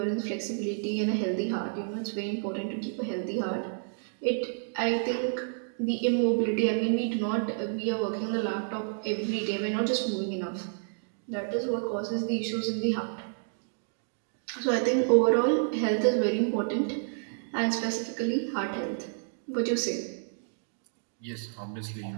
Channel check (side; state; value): left; silent; digital silence